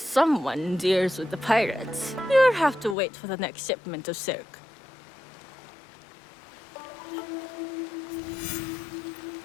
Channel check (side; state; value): right; drops out; at 3.0 s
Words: deals with the pirates, you'll have to wait for the next shipment of silk.